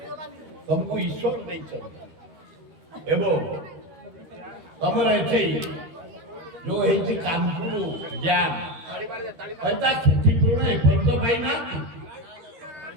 ତମକୁ ଈଶ୍ୱର ଦେଇଛନ୍ତି ଏବଂ ତମର ଏଠି ଯୋଉ ହେଇଛି କାନପୁର ଡ୍ୟାମ, ତା କ୍ଷତିପୂରଣ ଏପର୍ଯ୍ୟନ୍ତ ପାଇନାହାନ୍ତି।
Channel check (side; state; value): left; late; 13 ms